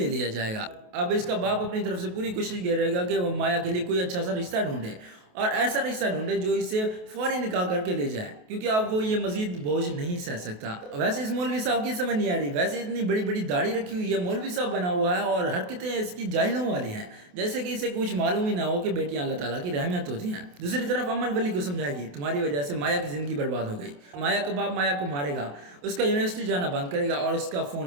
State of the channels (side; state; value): left; late; 28 ms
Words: لیا جائے گا۔ اب اس کا باپ اپنی طرف سے پوری کوشش کر رہے گا کہ وہ مایا کے لیے کوئی اچھا سا رشتہ ڈھونڈے اور ایسا رشتہ ڈھونڈے جو اسے فوری نکاح کر کے لے جائے، کیونکہ اب وہ یہ مزید بوجھ نہیں سہ سکتا۔ ویسے اس مولوی صاحب کی سمجھ نہیں آ رہی، ویسے اتنی بڑی بڑی داڑھی رکھی ہوئی ہے، مولوی صاحب بنا ہوا ہے اور حرکتیں اس کی جاہلوں والی ہیں، جیسے کہ اسے کچھ معلوم ہی نہ ہو کہ بیٹیاں اللہ تعالیٰ کی رحمت ہوتی ہیں۔ دوسری طرف امل ولی کو سمجھائے گی تمہاری وجہ سے مایا کی زندگی برباد ہو گئی، مایا کا باپ مایا کو مارے گا، اس کا یونیورسٹی جانا بند کرے گا اور اس کا